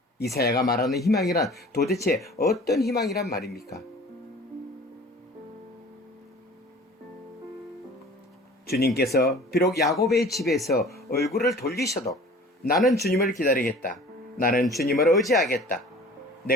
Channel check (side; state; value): both; normal; correlation 0.45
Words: 이사야가 말하는 희망이란 도대체 어떤 희망이란 말입니까? 주님께서 비록 야곱의 집에서 얼굴을 돌리셔도 나는 주님을 기다리겠다. 나는 주님을 의지하겠다.